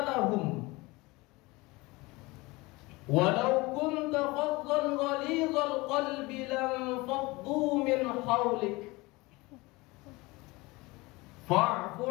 lahum walau kunta faddan ghalidhal qalbi lam faddu min hawlik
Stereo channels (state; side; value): quieter; right; 23.0 dB